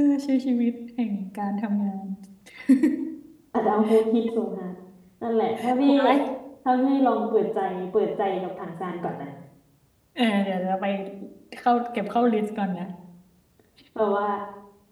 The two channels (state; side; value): identical; both; correlation 1.00